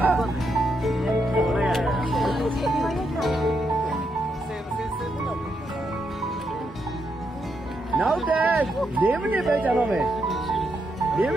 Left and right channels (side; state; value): both; normal; correlation 0.80